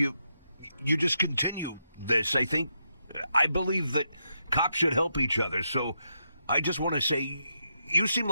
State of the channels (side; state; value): both; inverted; correlation -0.82